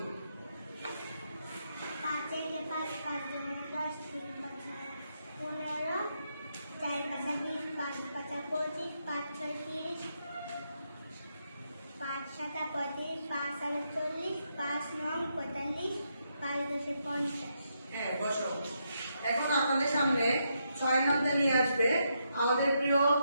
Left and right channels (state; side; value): inverted; both; correlation -0.80